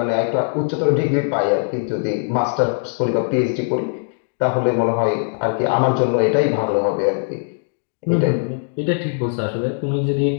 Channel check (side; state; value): right; silent; digital silence